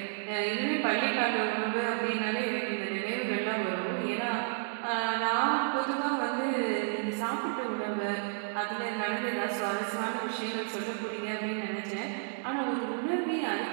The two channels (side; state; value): left; silent; digital silence